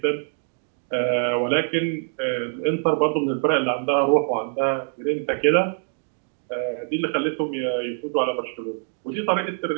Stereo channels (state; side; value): silent; left; 62 dB below the other